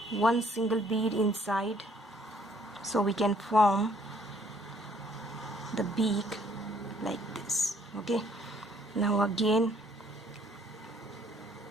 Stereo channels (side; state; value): both; normal; correlation 0.63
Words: 1 single bead inside so we can form the beak like this. Okay, now again